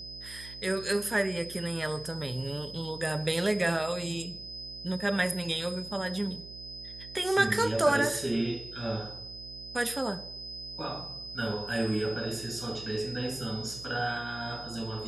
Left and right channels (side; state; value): right; noise; hum, 15 dB below the sound